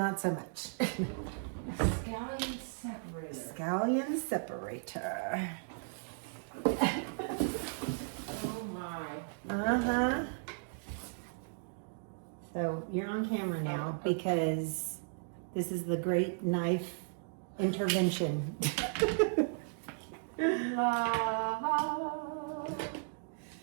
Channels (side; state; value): left; silent; digital silence